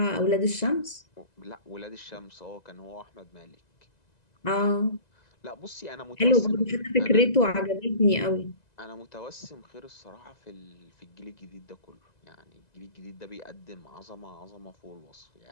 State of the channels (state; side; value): late; right; 2.0 ms